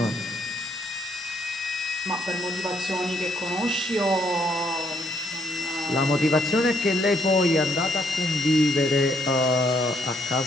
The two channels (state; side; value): normal; both; correlation 0.71